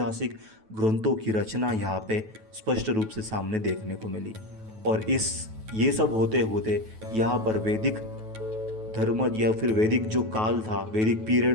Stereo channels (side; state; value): left; late; 9.2 ms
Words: ग्रंथों की रचना यहाँ पे स्पष्ट रूप से सामने देखने को मिली। और ये सब होते होते यहाँ पर वैदिक धर्म या फिर वैदिक जो काल था, वैदिक